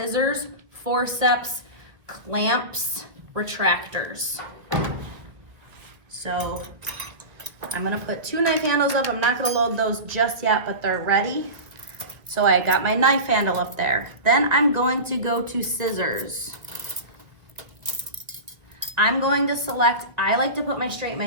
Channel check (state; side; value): late; left; 1.5 ms